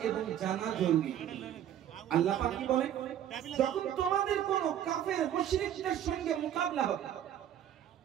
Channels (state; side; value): quieter; left; 10.7 dB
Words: এবং জানা জরুরি। আল্লাহ পাক কি বলেন, যখন তোমাদের কোন কাফের মুশরিকদের সঙ্গে মোকাবিলা হবে,